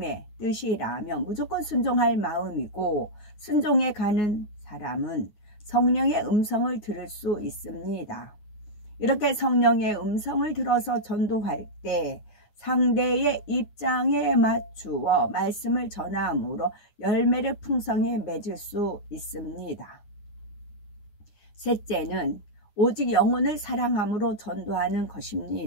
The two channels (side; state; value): right; late; 9.6 ms